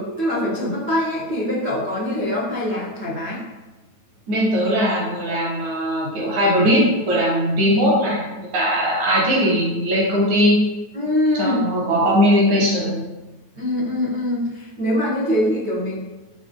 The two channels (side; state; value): left; late; 9.2 ms